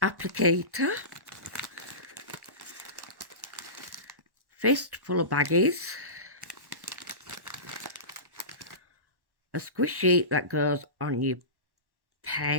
applicator, fist full of baggies, a squish sheet that goes on your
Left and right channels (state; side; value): late; left; 1.1 ms